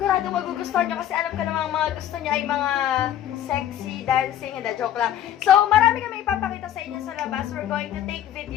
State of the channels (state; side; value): quieter; right; 11.2 dB